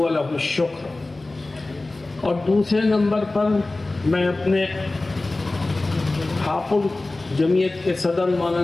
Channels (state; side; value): quieter; right; 3.0 dB